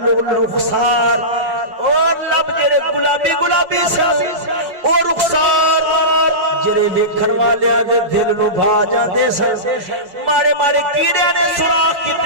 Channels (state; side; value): late; left; 5.5 ms